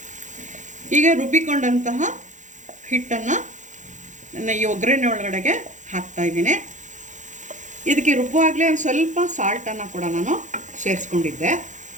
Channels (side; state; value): left; late; 0.36 ms